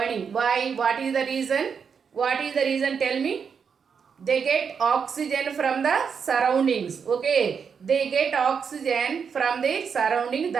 Why? What is the reason? What is the reason? Tell me. They get oxygen from the surroundings. Okay, they get oxygen from the surrounding.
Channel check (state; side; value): quieter; left; 6.4 dB